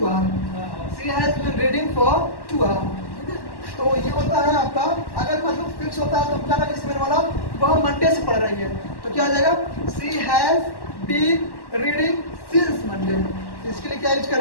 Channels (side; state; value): right; late; 1.1 ms